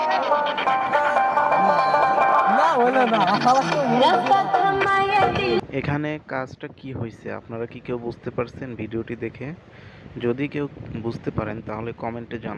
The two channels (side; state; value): both; identical; correlation 1.00